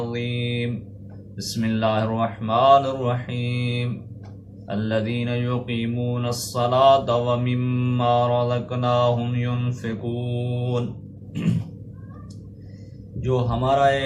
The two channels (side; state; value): both; identical; correlation 1.00